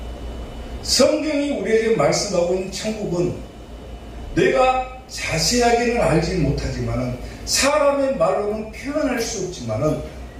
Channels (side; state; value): both; identical; correlation 1.00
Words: 성경이 우리에게 말씀하고 있는 천국은 내가 자세하게는 알지 못하지만은 사람의 말로는 표현할 수 없지만은